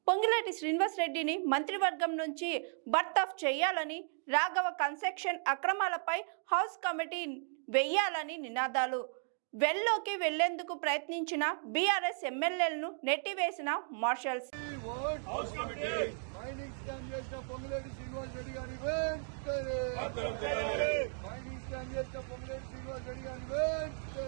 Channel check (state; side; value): silent; left; 54 dB below the other